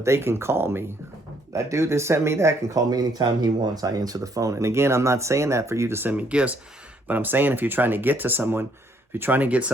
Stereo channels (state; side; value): normal; both; correlation 0.68